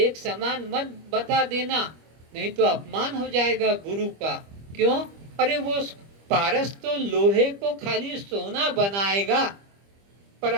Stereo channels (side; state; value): left; late; 25 ms